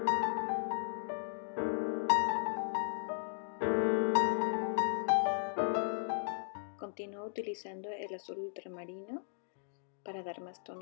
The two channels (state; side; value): silent; right; digital silence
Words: Continúo utilizando el azul ultramarino para dar más